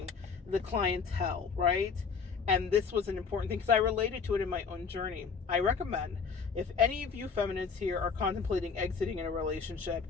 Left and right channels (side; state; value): right; quieter; 5.6 dB